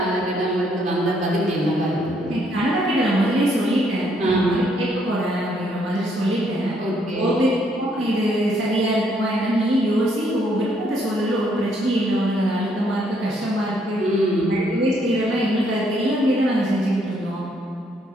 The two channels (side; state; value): both; normal; correlation 0.70